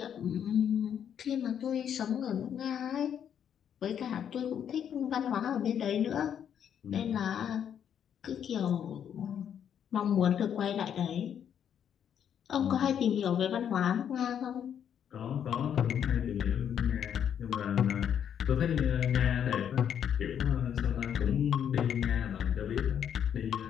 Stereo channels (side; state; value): right; quieter; 8.8 dB